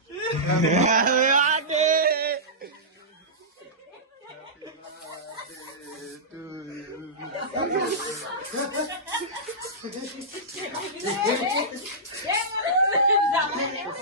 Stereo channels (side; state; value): both; normal; correlation -0.16